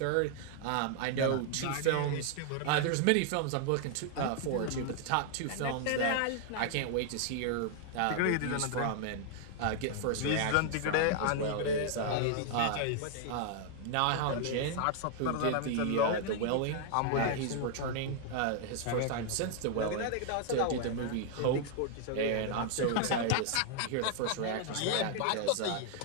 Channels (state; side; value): different; both; correlation 0.00